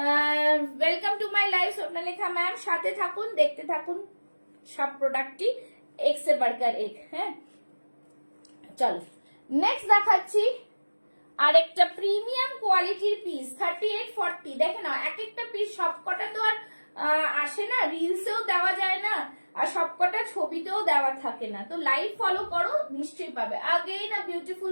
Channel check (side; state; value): both; inverted; correlation -1.00